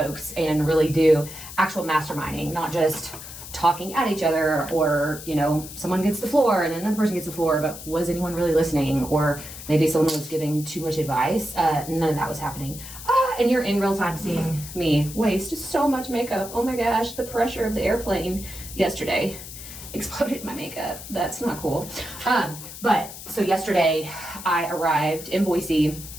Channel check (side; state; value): left; noise; hiss, 12 dB below the sound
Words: and really do actual masterminding, not just talking at each other, or, you know, someone gets the floor and then another person gets the floor, but was anyone really listening? Or maybe someone was giving too much advice. None of that was happening. And you're in real time seeing me waste so much makeup. Oh my gosh, the pressure of the airplane yesterday exploded my makeup. That's not cool. But so yesterday I arrived in Boise,